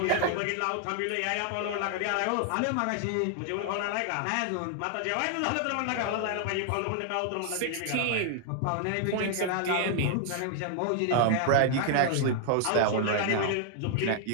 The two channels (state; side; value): different; both; correlation 0.00